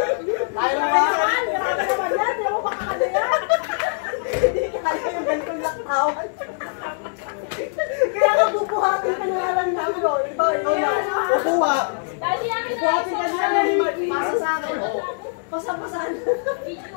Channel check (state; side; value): silent; right; digital silence